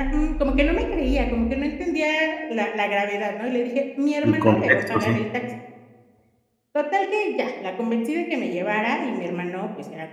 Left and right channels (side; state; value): both; identical; correlation 1.00